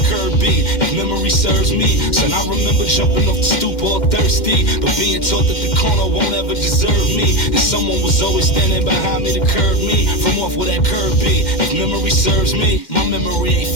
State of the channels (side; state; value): right; late; 2.1 ms